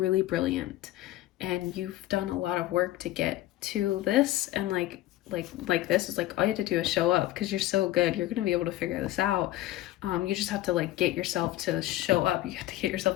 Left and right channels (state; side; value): quieter; right; 15.4 dB